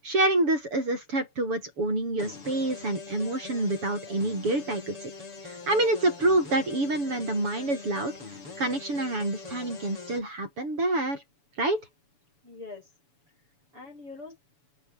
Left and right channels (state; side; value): late; left; 7.0 ms